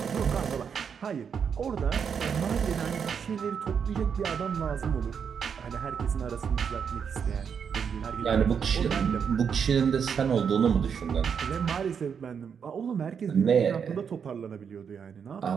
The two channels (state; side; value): quieter; left; 7.0 dB